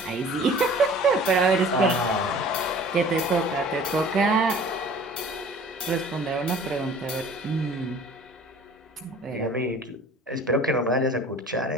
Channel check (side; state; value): both; normal; correlation 0.47